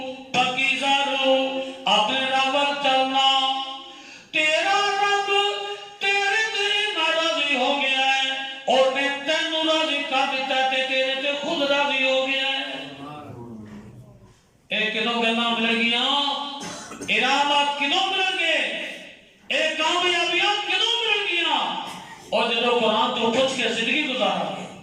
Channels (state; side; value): identical; both; correlation 1.00